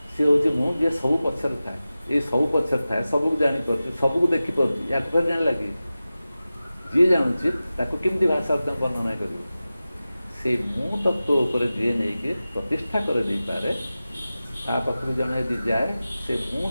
सी हूँ मु जे सब पचर था ये सब पचर था सबको जापर सबको देखिपर या जान लगे जी जानूँ ताको केमती भाषा वर्णना कर से मु तत्व उपर जी नहीं प्रतिष्ठा कर दे पारे ता पाखु जन यदि जाए से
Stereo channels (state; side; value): inverted; both; correlation -0.95